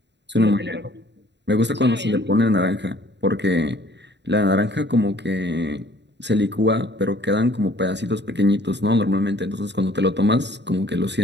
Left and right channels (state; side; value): late; left; 0.51 ms